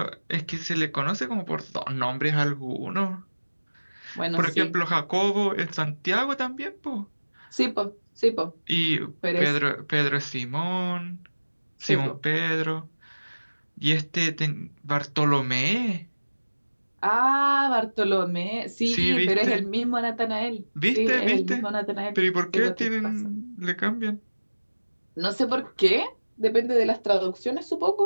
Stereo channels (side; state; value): both; inverted; correlation -1.00